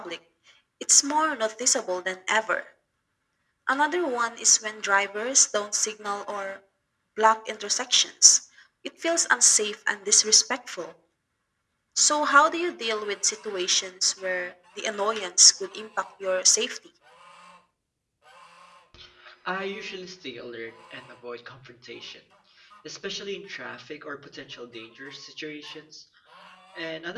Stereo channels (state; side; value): identical; both; correlation 1.00